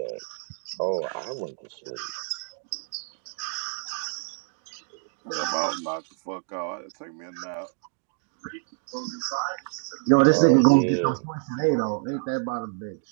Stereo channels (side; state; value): left; silent; digital silence